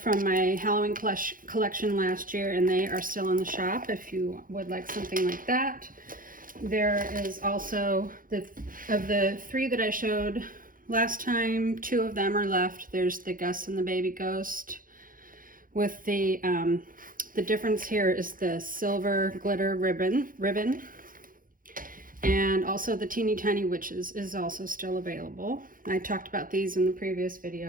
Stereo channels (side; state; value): left; late; 0.40 ms